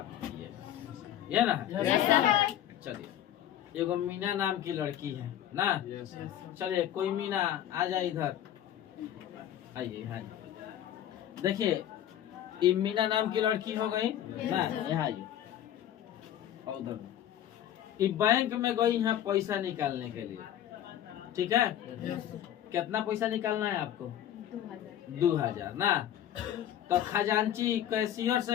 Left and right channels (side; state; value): right; quieter; 11.3 dB